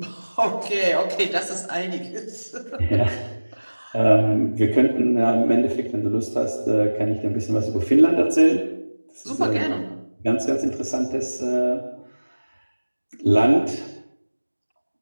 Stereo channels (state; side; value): inverted; both; correlation -1.00